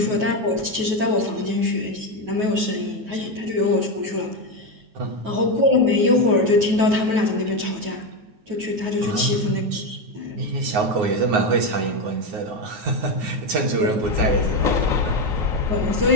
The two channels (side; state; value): left; late; 9.4 ms